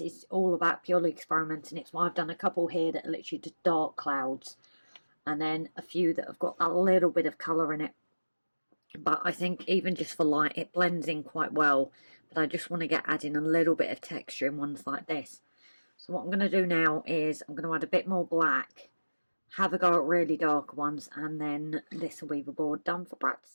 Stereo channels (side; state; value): both; inverted; correlation -1.00